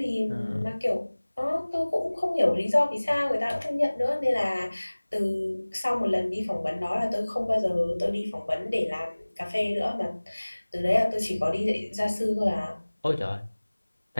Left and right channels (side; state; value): both; inverted; correlation -1.00